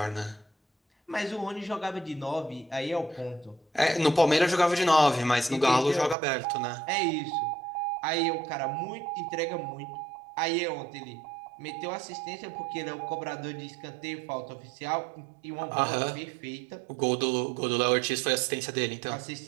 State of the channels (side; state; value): left; drops out; at 6.2 s